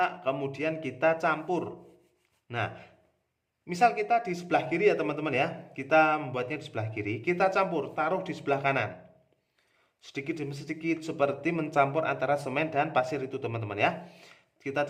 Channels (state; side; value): identical; both; correlation 1.00